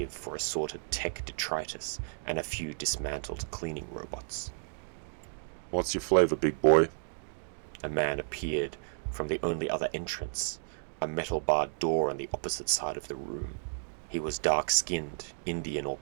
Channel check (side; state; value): left; silent; digital silence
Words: for assorted tech detritus and a few dismantled cleaning robots. "What's your flavor, big boy?" A man appeared from the only other entrance, a metal-barred door on the opposite side of the room. He was dark-skinned, Indian or